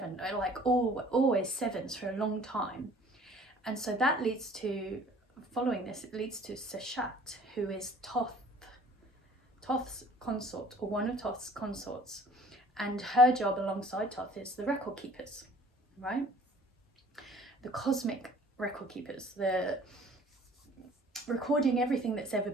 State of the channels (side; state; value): both; normal; correlation 0.52